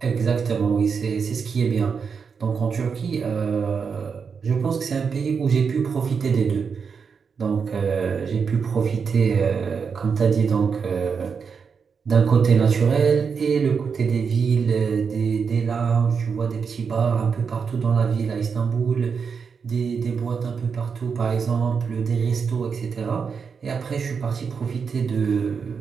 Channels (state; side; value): quieter; left; 5.9 dB